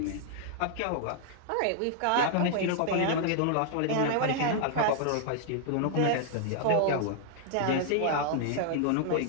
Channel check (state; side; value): different; both; correlation -0.01